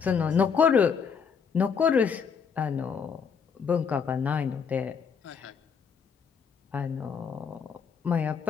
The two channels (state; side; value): quieter; right; 6.4 dB